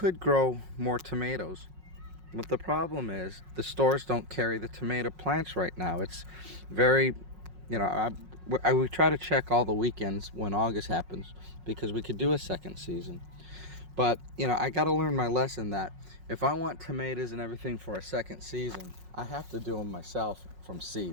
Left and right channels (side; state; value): left; late; 5.5 ms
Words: grow more tomatoes. But the problem is the stores don't carry the tomato plants right now. It's very, we try to check all the weekends when August happens, because we could do a second season. But, I got to learn my lesson that if I want tomatoes and everything for a second season, I have to do them myself from